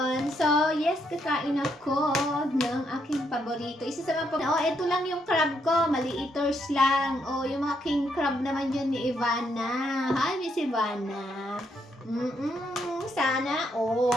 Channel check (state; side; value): normal; both; correlation 0.76